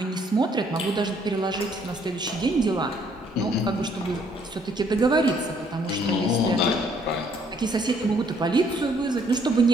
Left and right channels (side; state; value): both; normal; correlation 0.65